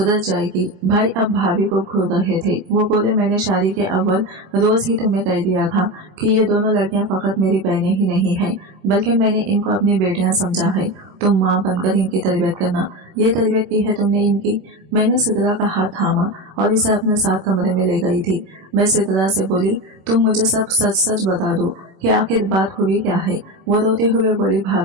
जाएगी। भाई अब भाभी को घूर रहे थे। वो बोले, मैंने शादी के अव्वल रोज ही तुम्हें कह दिया था कि ये दोनों लड़कियां फकत मेरी बहनें ही नहीं हैं, बल्कि मैंने इनको अपनी बेटियां समझा है। तुम माँ बनकर इनकी तरबियत करना। ये तरबियत की है तुमने इनकी। मैंने सिद्रा का हाथ थामा और इसे अपने साथ कमरे में ले गई थी। मैं सिद्रा से बोली, तुम मुझे सब सच सच बता दो कि आखिर बात हुई क्या है। वो रोते हुए बोली,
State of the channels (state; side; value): late; left; 26 ms